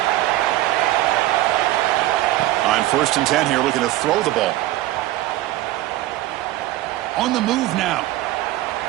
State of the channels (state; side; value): quieter; left; 16.0 dB